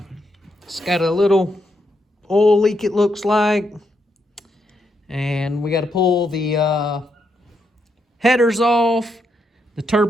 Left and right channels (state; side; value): normal; both; correlation 0.79